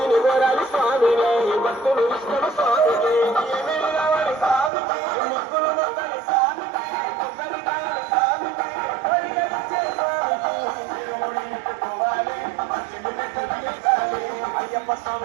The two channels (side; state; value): left; drops out; at 4.7 s